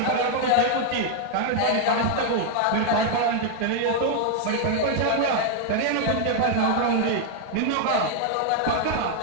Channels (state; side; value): different; both; correlation 0.00